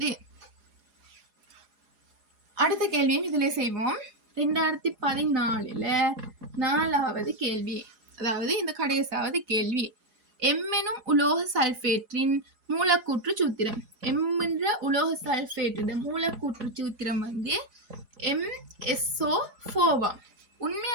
அடுத்த கேள்வியும் இதுல செய்வோம். 2014 4வது கேள்வி, அதாவது இந்த கடைசாவது கேள்வி. எம் எனும் உலோக சல்பேட்டின் மூலக்கூற்று சூத்திரம். எம் என்ற உலோக சல்பேட்டின் மூலக்கூற்று சூத்திரம் வந்து MsO4.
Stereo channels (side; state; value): left; late; 4.8 ms